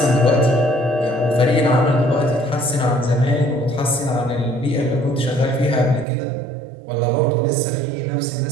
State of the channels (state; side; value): drops out; left; at 6.1 s